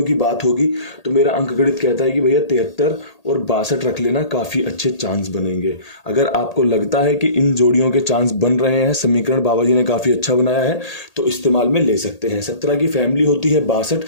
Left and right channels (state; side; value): late; right; 1.8 ms